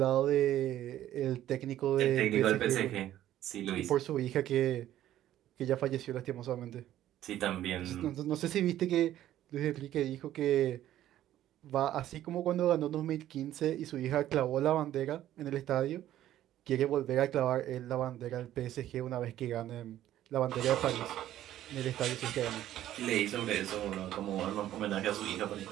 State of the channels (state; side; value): quieter; left; 12.8 dB